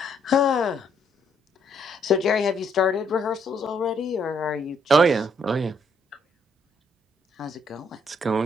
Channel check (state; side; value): normal; both; correlation 0.70